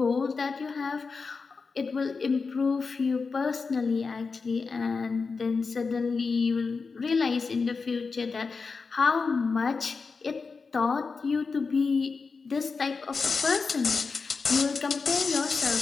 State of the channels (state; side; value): quieter; right; 4.7 dB